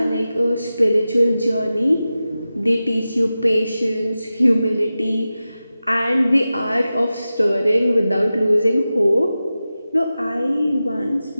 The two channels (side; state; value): both; inverted; correlation -0.94